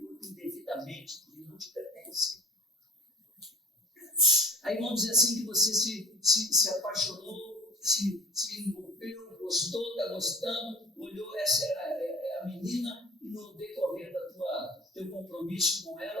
corpo indevidamente, que não te pertence. Aí vamos dizer assim que você se apaixonou, se envolveu, gostou, está gostando, olhou, essa é a menina, e no decorrer teu compromisso com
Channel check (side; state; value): both; normal; correlation 0.47